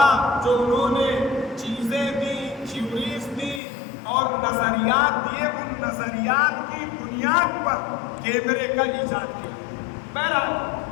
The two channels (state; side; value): drops out; right; at 3.6 s